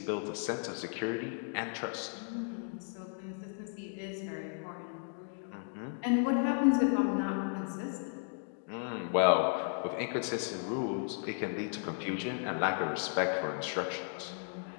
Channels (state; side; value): silent; right; 55 dB below the other